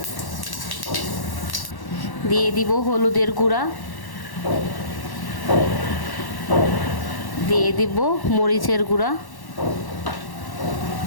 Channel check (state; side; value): late; right; 1.1 ms